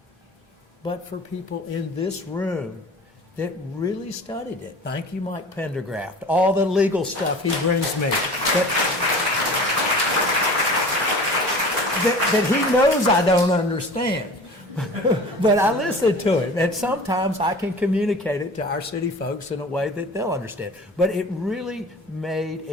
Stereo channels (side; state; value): both; normal; correlation 0.40